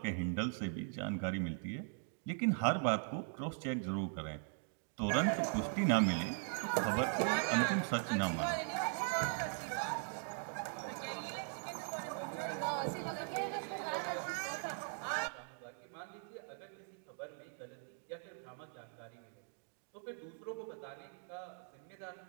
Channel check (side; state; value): left; silent; 51 dB below the other